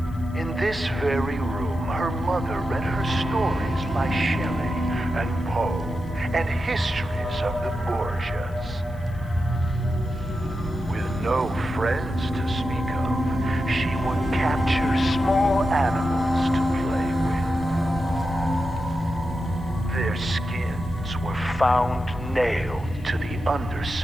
In this very room, her mother read her stories by Shelley and Poe and histories of the Borgias. With no friends to speak of, she would capture small animals to play with. Their skins were found nailed to the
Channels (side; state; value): left; noise; hiss, 29 dB below the sound